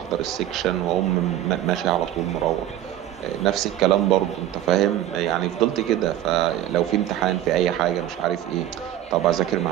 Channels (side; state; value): left; quieter; 12.5 dB